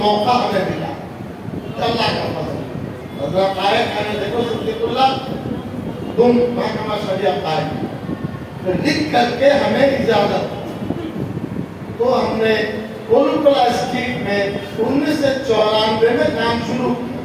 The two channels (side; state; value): both; identical; correlation 1.00